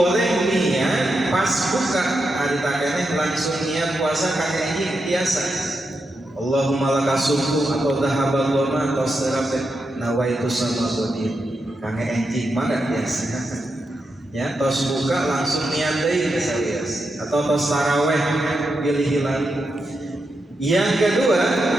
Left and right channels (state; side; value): normal; both; correlation 0.86